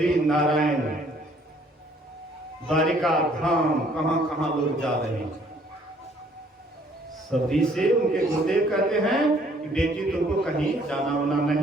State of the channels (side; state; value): both; normal; correlation 0.61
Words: नारायण, द्वारिका धाम, कहां कहां लोग जा रहे हैं। सबरी से उनके गुरुदेव कहते हैं कि बेटी तुमको कहीं जाना वाना